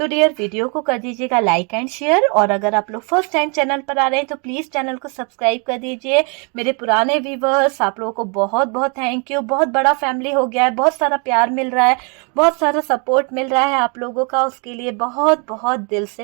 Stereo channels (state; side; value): quieter; left; 35.4 dB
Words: डियर वीडियो को कर दीजिएगा लाइक एंड शेयर, और अगर आप लोग फर्स्ट टाइम चैनल पर आ रहे हैं तो प्लीज चैनल को सब्सक्राइब कर दीजिए। मेरे पुराने व्यूवर्स, आप लोगों को बहुत बहुत थैंक यू। बहुत बड़ा फैमिली हो गया है, बहुत सारा प्यार मिल रहा है, बहुत सारा सपोर्ट मिल रहा है आप लोगों का, उसके लिए बहुत बहुत दिल